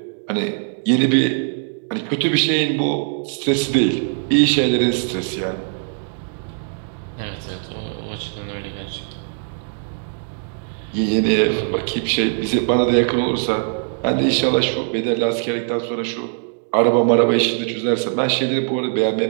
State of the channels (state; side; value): silent; left; digital silence